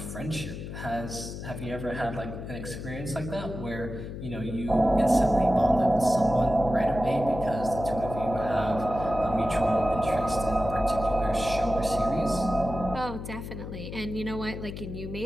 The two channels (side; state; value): left; noise; hum, 9 dB below the sound